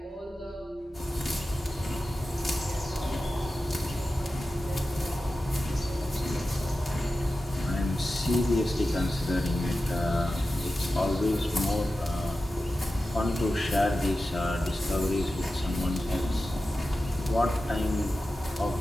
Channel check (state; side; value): normal; both; correlation 0.93